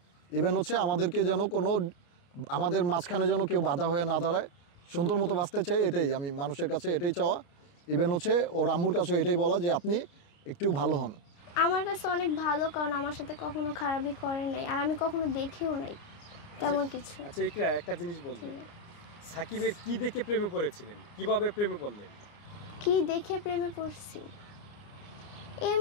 ইভেন আমাদেরকে যেন আমাদের মাঝখানে যেন কেউ বাধা হয়ে না দাঁড়ায়, সুন্দর মতো বাঁচতে চাই, এটাই আমি মানুষের কাছে এটাই চাওয়া। ইভেন ওর আম্মুর কাছে এটাই বলা যে আপনি একটু ভালো হন। আমার কাছে অনেক ভালো, কারণ আমার সাথে কখনো খারাপই করে নাই, আর আমি কখনো দেখিও নাই তেমন কিছু। আচ্ছা ইকরা, একটা জিনিস বলবেন, সাকিবের কি দেখে প্রেমে পড়েছিলেন, কিভাবে প্রেমে পড়লেন? কি দেখে প্রেমে পড়ছি?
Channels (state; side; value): late; right; 29 ms